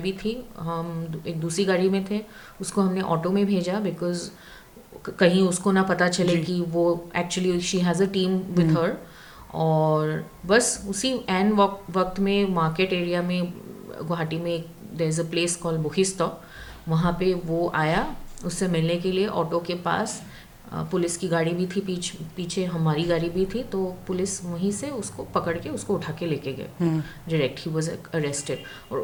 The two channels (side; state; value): both; identical; correlation 1.00